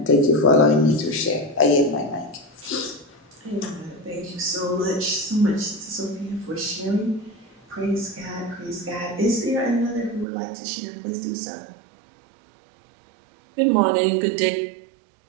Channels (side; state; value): left; drops out; at 10.2 s